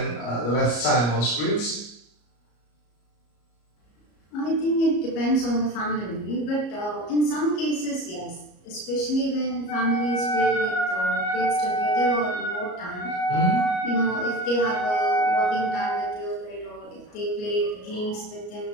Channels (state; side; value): late; right; 33 ms